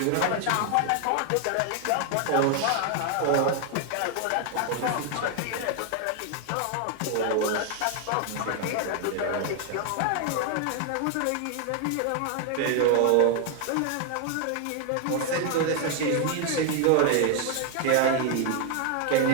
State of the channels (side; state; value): both; different; correlation 0.00